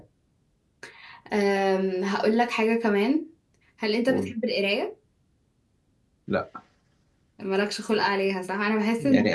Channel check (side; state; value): both; identical; correlation 1.00